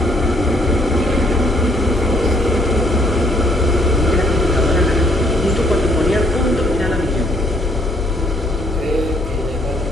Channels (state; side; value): normal; both; correlation 0.67